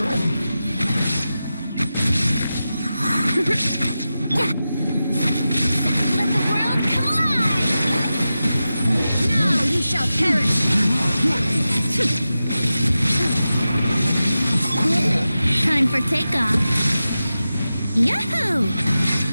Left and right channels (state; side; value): inverted; both; correlation -0.93